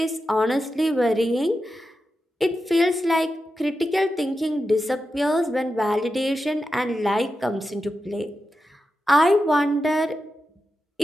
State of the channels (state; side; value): normal; both; correlation 0.90